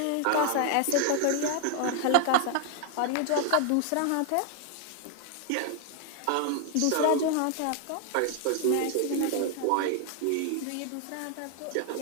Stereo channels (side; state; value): both; different; correlation 0.00